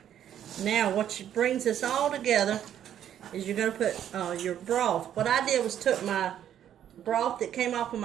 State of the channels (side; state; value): left; quieter; 10.3 dB